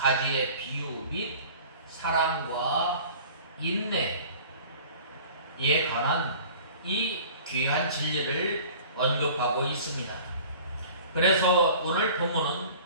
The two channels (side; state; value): both; inverted; correlation -0.45